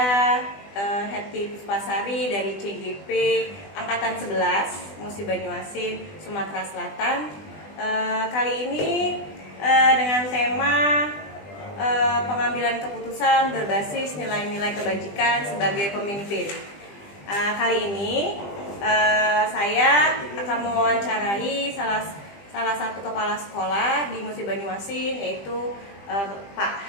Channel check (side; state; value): right; late; 20 ms